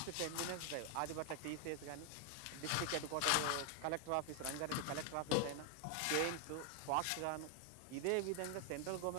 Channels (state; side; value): different; both; correlation 0.00